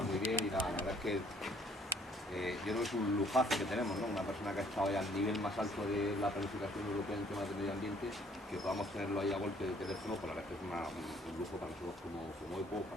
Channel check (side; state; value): both; normal; correlation 0.61